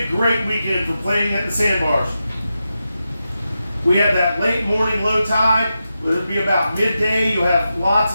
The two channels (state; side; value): inverted; both; correlation -0.89